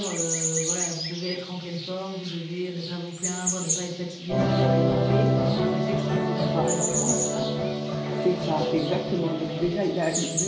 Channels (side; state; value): both; identical; correlation 1.00